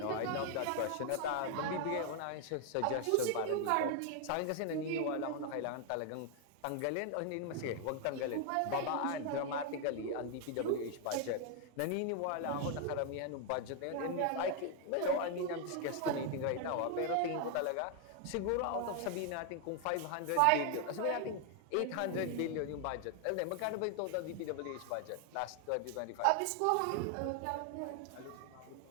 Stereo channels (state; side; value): different; both; correlation 0.00